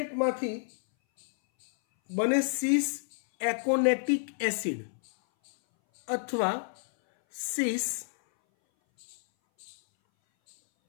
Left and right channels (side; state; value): right; silent; 58 dB below the other